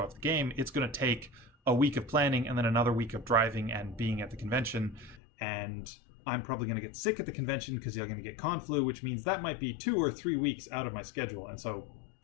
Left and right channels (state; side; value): drops out; right; at 5.2 s